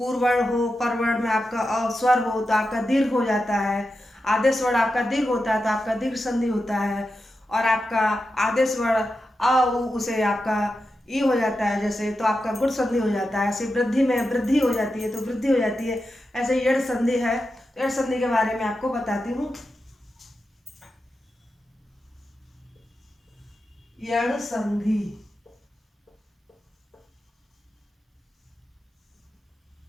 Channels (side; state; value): both; normal; correlation 0.90